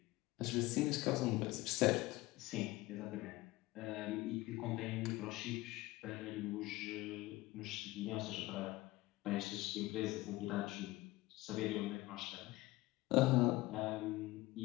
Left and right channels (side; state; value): right; quieter; 19.3 dB